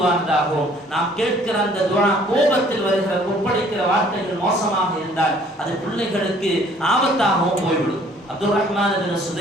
நாம் கேட்கிற அந்த துஆ கோபத்தில் வருகிற கொப்பளிக்கிற வார்த்தைகள் மோசமாக இருந்தால் அது பிள்ளைகளுக்கு ஆபத்தாகவும் போய்விடும். அப்துல் ரஹ்மான் இப்னு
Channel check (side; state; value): both; normal; correlation 0.58